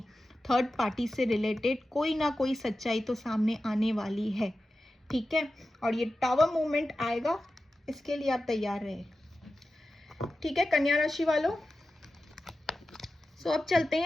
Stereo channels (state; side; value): normal; both; correlation 0.93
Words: थर्ड पार्टी से रिलेटेड कोई ना कोई सच्चाई तो सामने आने वाली है। ठीक है, और ये टावर मूवमेंट आएगा, इसके लिए आप तैयार रहे। ठीक है कन्या राशि वालों। सो अब चलते